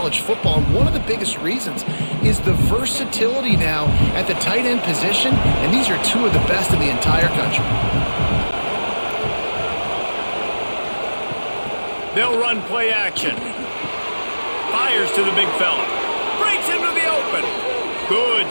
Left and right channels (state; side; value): inverted; both; correlation -1.00